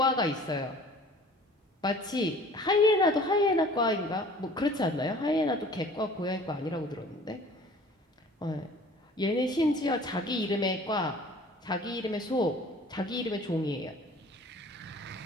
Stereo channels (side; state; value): both; normal; correlation 0.48